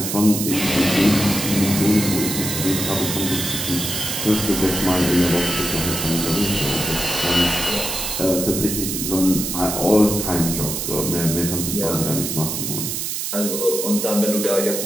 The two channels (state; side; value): noise; right; hiss, 3 dB below the sound